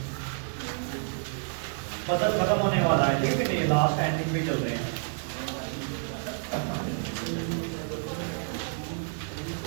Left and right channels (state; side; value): silent; left; 58 dB below the other